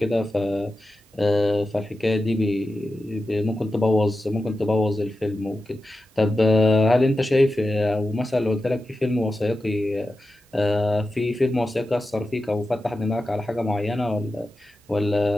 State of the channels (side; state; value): both; normal; correlation 0.92